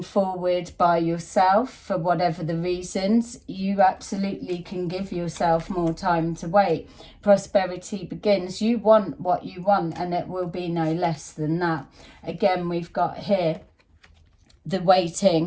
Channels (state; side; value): identical; both; correlation 1.00